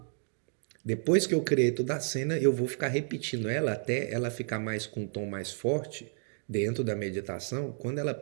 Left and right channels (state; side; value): silent; left; digital silence